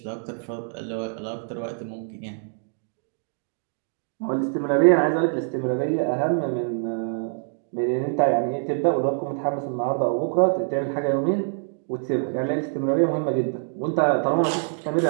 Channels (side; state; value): left; silent; digital silence